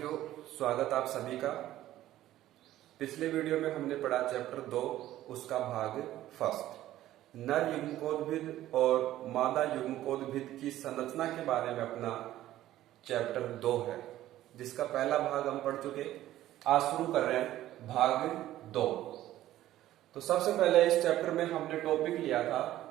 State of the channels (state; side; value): quieter; left; 14.0 dB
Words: स्वागत आप सभी का। पिछले वीडियो में हमने पढ़ा चैप्टर 2, उसका भाग फर्स्ट, नर युग्मकोद्भिद और मादा युग्मकोद्भिद की संरचना के बारे में अपना चैप्टर 2 है, जिसका पहला भाग हम पढ़ चुके। आज शुरू कर रहे हैं भाग 2। तो सबसे पहले इस चैप्टर में हमने टॉपिक लिया था